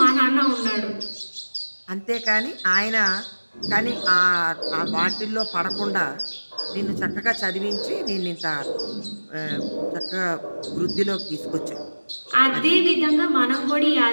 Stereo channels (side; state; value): both; inverted; correlation -1.00